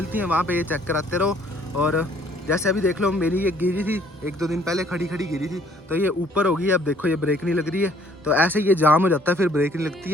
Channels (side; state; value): both; normal; correlation 0.60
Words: हैं वहाँ पे ये चेक कराते रहो। और जैसे अभी देख लो, मेरी ये गिरी थी 1-2 दिन पहले, खड़ी गिरी थी, तो ये ऊपर होगी, अब देखो ये ब्रेक नहीं लग रही है। तो ऐसे ये जाम हो जाता है, फिर ब्रेक नहीं लगती